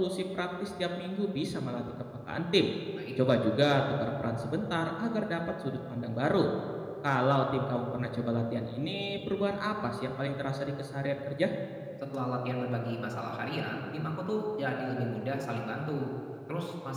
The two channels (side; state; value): both; identical; correlation 1.00